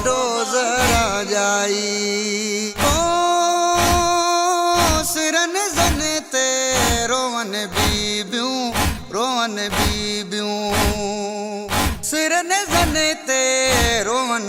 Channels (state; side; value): identical; both; correlation 1.00